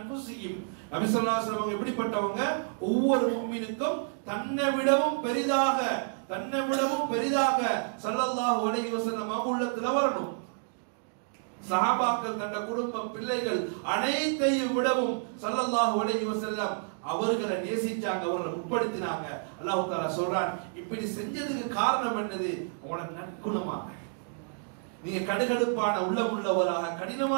நபி ஸல்லல்லாஹு அலைஹி வஸல்லம் எப்படிப்பட்டவங்க, ஒவ்வொரு முஃமினுக்கும் தன்னை விடவும் பெரிதாக ஸல்லல்லாஹு அலைஹி வஸல்லம் அவங்க உள்ளத்துல வரணும். சஹாபாக்கள் தன்னுடைய குடும்பம் பிள்ளைகள் அனைத்தையும் விடவும் ஸல்லல்லாஹு அலைஹி வஸல்லம் அவர்களை நேசிச்சாங்க, அவர்களை உட்படுத்தினாங்க. அல்லாஹ் தஆலா சொல்றான், இப்படி செஞ்சதுக்கு காரணம் என்னது, உங்களோட நற்குணமாக. நீங்க கடுகடுப்பான உள்ளம் உள்ளவராக,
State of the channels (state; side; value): silent; left; digital silence